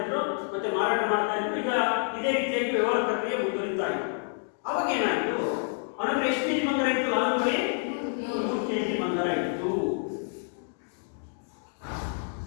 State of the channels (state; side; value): silent; right; 55 dB below the other